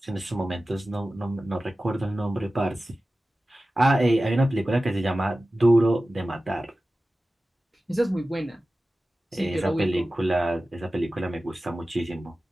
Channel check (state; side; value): normal; both; correlation 0.95